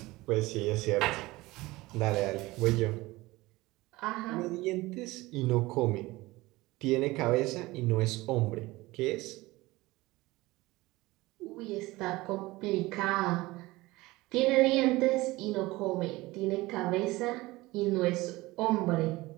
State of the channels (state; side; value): quieter; left; 20.1 dB